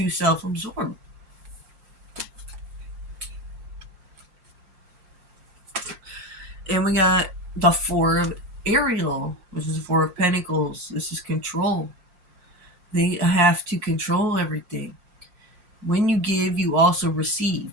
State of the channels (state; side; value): late; left; 5.6 ms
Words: self absorbed. And we got the Four of Ariel, which is the Four of Pentacles. This is control. They have to control everything. When you give, you also receive.